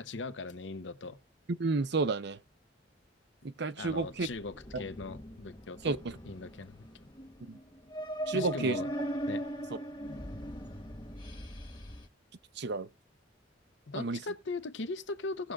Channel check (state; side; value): normal; both; correlation 0.27